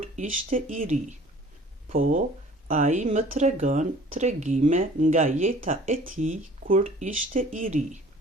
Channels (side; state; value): both; normal; correlation 0.50